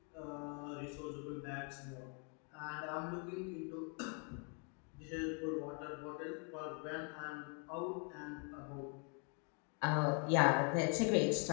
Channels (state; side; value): quieter; right; 38.6 dB